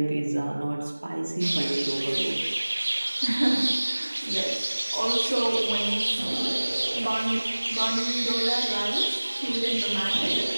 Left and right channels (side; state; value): both; inverted; correlation -1.00